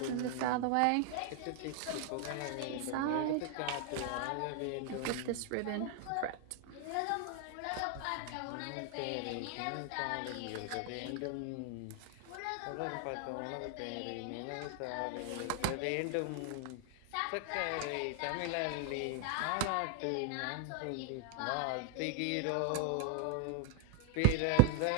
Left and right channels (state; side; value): different; both; correlation 0.00